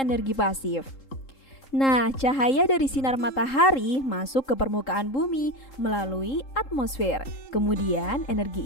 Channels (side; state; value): right; late; 3.7 ms